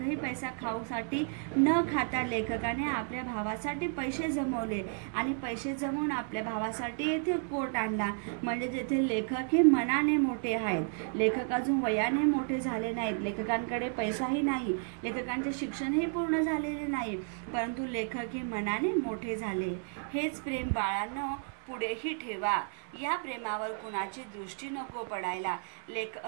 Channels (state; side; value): silent; left; 56 dB below the other